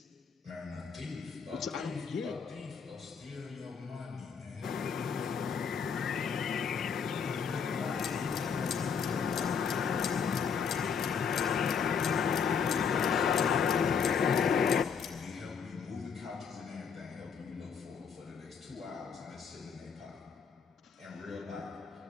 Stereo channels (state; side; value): quieter; right; 6.6 dB